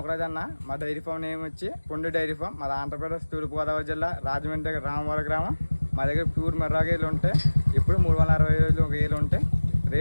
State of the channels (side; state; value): both; inverted; correlation -1.00